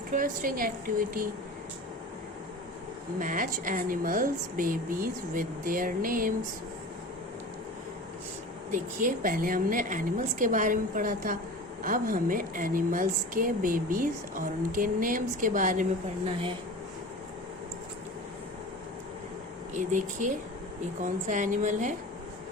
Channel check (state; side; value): normal; both; correlation 0.35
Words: activity. Match animals, babies with their names. देखिए, पहले हमने animals के बारे में पढ़ा था. अब हमें एनिमल्स के बेबीज और उनके नेम्स के बारे में पढ़ना है. ये देखिए, ये कौन सा एनिमल है?